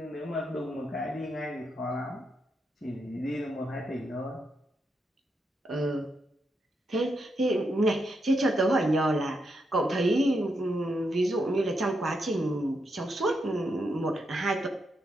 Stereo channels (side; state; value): both; normal; correlation 0.82